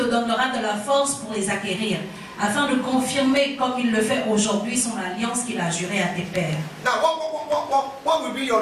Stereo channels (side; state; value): both; identical; correlation 1.00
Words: donnera de la force pour les acquérir, afin de confirmer comme il le fait aujourd'hui son alliance qu'il a jurée à tes pères. Now, what will be